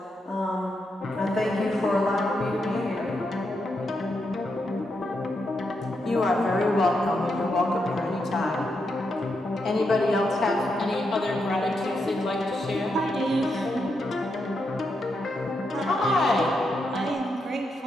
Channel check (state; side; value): normal; both; correlation 0.83